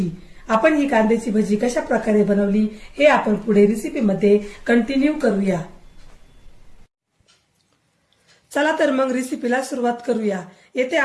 आपण ही कांद्याची भजी कशा प्रकारे बनवली हे आपण पुढे रेसिपी मध्ये कंटिन्यू करूया। चला तर मग रेसिपीला सुरुवात करूया। येथे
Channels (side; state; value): both; identical; correlation 1.00